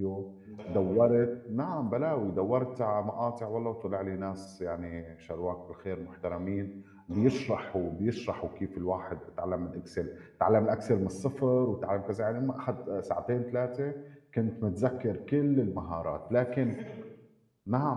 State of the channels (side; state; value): both; identical; correlation 1.00